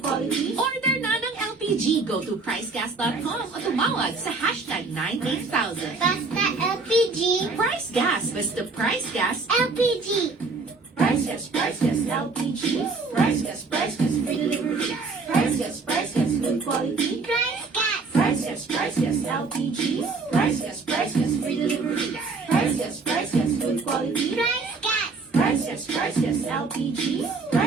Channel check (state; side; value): quieter; left; 4.1 dB